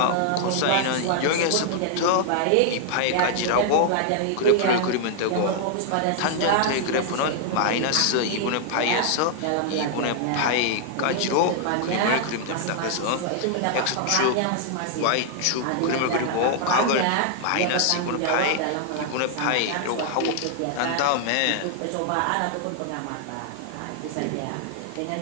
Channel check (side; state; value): both; different; correlation 0.00